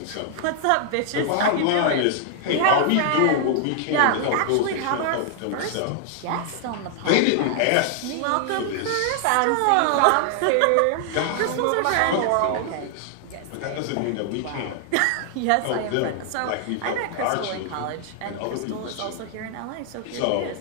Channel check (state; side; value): different; both; correlation 0.00